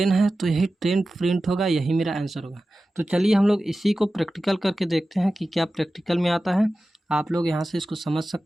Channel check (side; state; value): both; normal; correlation 0.95